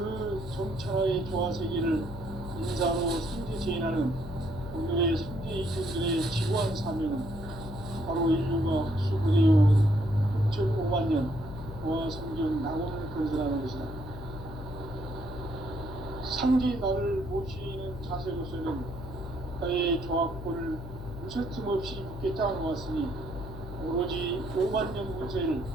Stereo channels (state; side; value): noise; left; hum, 10 dB below the sound